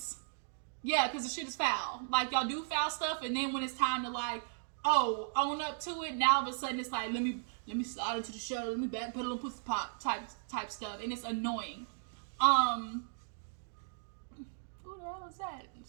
Yeah, because the shit is foul. Like, y'all do foul stuff, and then when it's time to, like, oh, own up to it, now all of a sudden it's like, let me slide into the show, let me back pedal and pussy pop type stuff, and it's annoying. Who the hell is that?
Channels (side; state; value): left; silent; digital silence